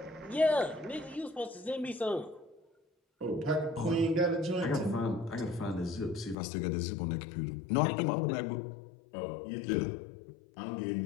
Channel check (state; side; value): drops out; right; at 6.4 s